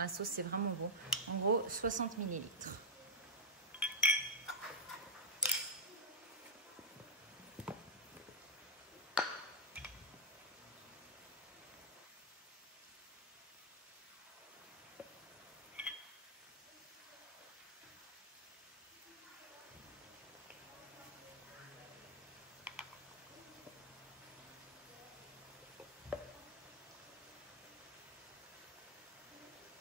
sauce, c'est vraiment bon. En gros, 60 ml.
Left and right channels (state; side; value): normal; both; correlation -0.06